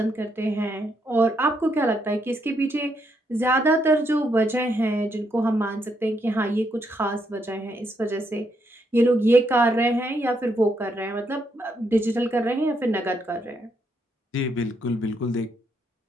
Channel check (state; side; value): normal; both; correlation 0.77